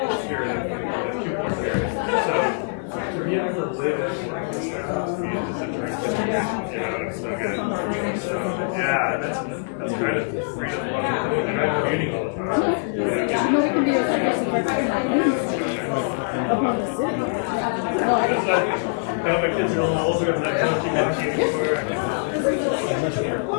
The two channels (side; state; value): right; silent; 63 dB below the other